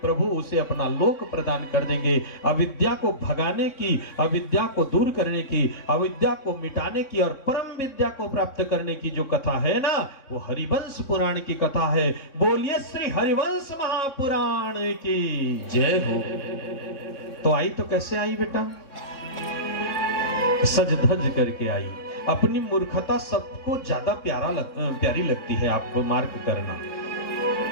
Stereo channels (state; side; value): late; right; 3.6 ms